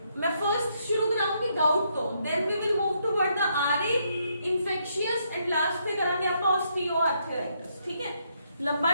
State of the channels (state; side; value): inverted; both; correlation -0.75